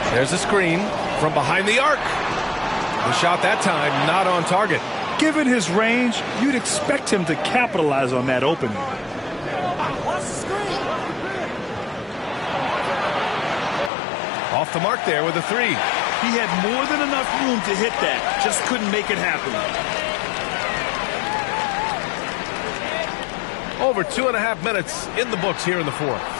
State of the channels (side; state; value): right; drops out; at 13.9 s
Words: There's a screen from behind the arc. The shot that time not on target. Given his range, you'd expect him to capitalize on that opening. Off the mark there with a 3. He had more than enough room to hit that, just couldn't make it happen. Over 2.5 minutes in the books here in the fourth.